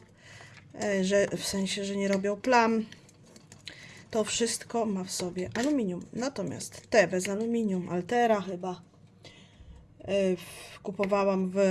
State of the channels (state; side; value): identical; both; correlation 1.00